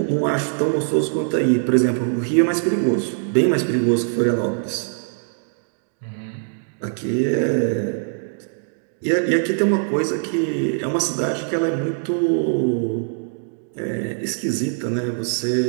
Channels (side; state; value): left; silent; digital silence